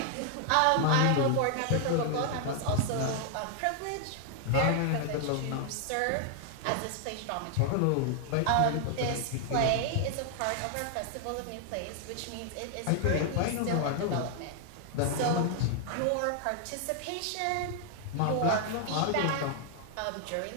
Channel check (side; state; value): both; different; correlation 0.00